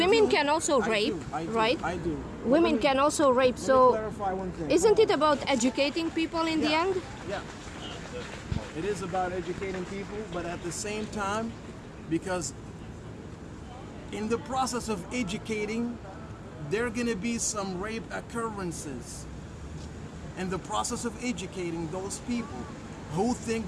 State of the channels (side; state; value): both; identical; correlation 1.00